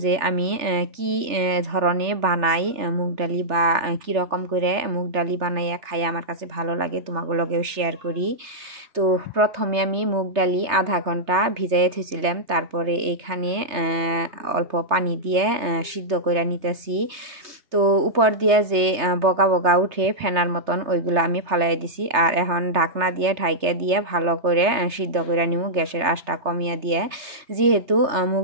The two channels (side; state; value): left; late; 3.3 ms